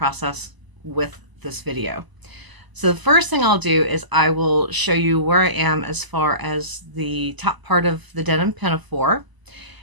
with this video. So the first thing I'll do is I will show you where I am as far as the top part of the denim pinafore.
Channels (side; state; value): left; late; 1.0 ms